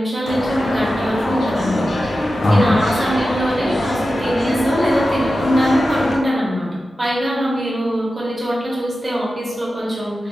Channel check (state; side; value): normal; both; correlation 0.92